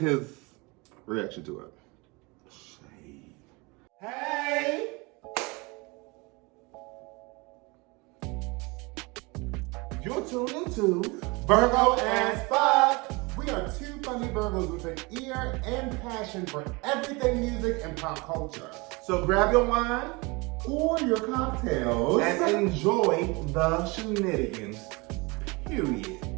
reaction to it. Hey! You're tuned into Virgo as fuck. We are two funny Virgos with an ear and passion for everything music and pop culture. So grab your wine Or your cocktails. and enjoy the shenanigans. Period.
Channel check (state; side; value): quieter; left; 26.3 dB